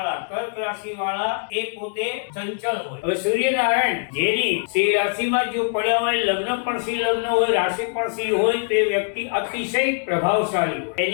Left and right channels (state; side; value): silent; right; digital silence